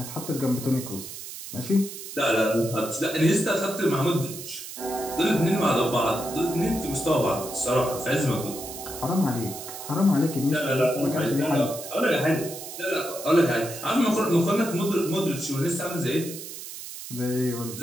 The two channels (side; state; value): right; noise; hiss, 11 dB below the sound